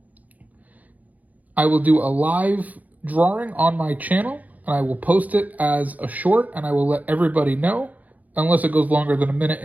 I will do a live drawing on my channel, and I will post it as a short, and I will let everybody know, unless it goes longer than a minute,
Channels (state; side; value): late; left; 0.078 ms